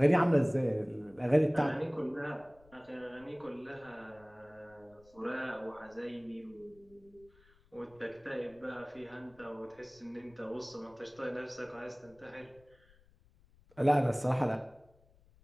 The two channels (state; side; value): noise; left; rumble, 29 dB below the sound